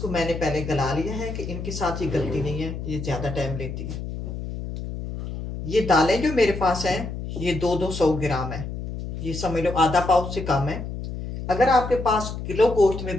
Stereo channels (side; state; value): left; noise; hum, 7 dB below the sound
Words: मैंने पहले गला लिया है कि इनके साथ ही गलती नहीं है, ये ज़्यादा टाइम लेती है। ये दालें जो मेरे पास हैं ये 200 ग्राम है, ये समझ लो आधा पाव से कम है। अगर आपके पास किलो गोश्त में